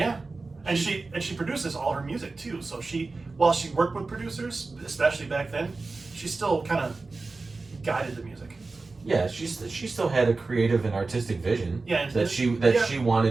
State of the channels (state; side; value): quieter; left; 3.7 dB